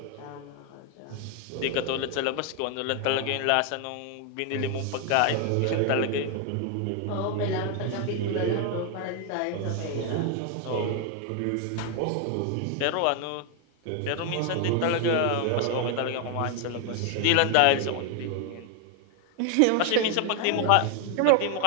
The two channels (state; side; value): different; both; correlation 0.01